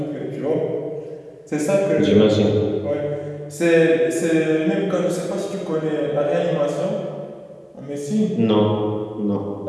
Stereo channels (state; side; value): identical; both; correlation 1.00